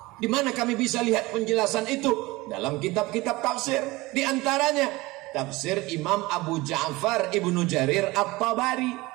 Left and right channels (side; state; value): left; quieter; 21.2 dB